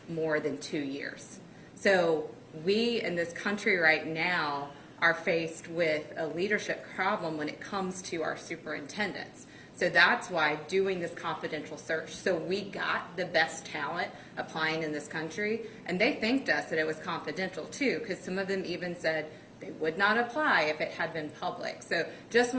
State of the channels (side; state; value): both; identical; correlation 1.00